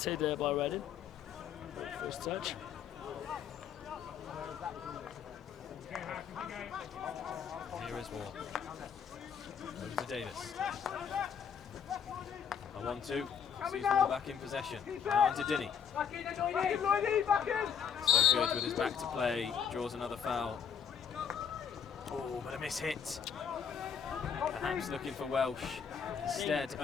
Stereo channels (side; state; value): right; quieter; 7.4 dB